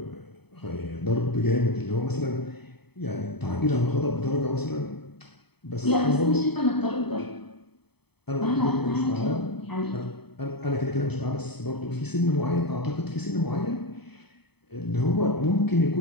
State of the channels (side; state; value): right; late; 0.98 ms